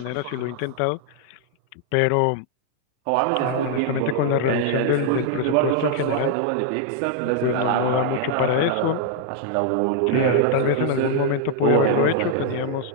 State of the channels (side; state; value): both; different; correlation 0.00